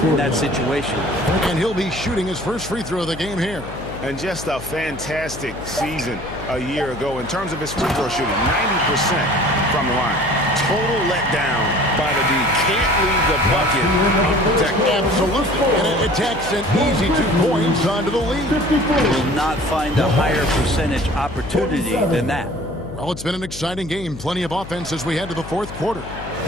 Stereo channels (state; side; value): noise; left; hum, 13 dB below the sound